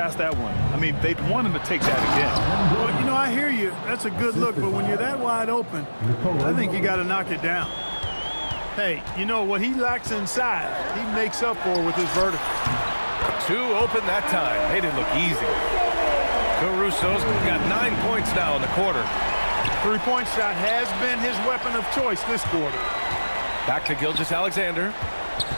that one. I mean, they'd want him to take that again. Well, you know, I hear you. That's a good look, but when you're that wide open, I think you got to knock it down. Hey, you know, what he lacks inside, he makes up for with his vertical. 2 open that time. Made it look easy. Caruso's got 9 points now in the quarter. Three-point shot has been his weapon of choice this quarter. Back to Gilgeous-Alexander.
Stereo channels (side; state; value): both; inverted; correlation -1.00